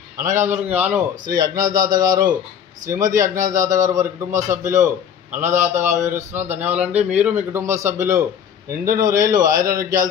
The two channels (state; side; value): quieter; right; 8.3 dB